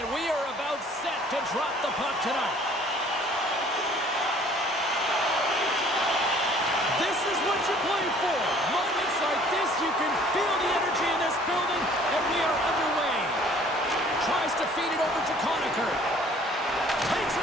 we are about set to drop the puck tonight. This is what you play for. Moments like this, you can feel the energy in this building, and we are underway. Tries to feed it over to Conacher. Takes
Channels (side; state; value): both; normal; correlation 0.54